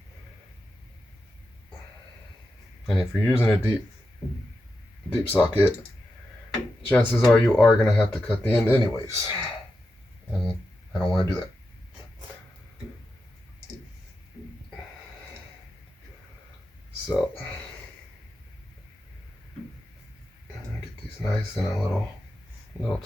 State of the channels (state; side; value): normal; both; correlation 0.89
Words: And if you're using a deep socket, chances are you are going to have to cut the end anyways. And I don't want to do that. So, get these nice and a little